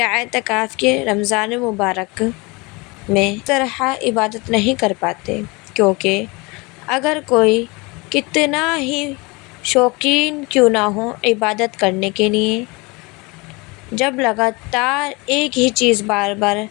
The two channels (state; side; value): quieter; right; 26.3 dB